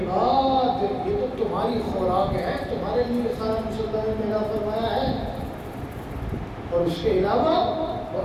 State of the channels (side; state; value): both; identical; correlation 1.00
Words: یہ تو تمہاری خوراک ہے، تمہارے لیے سارا کچھ اللہ نے پیدا فرمایا ہے۔ اور اس کے علاوہ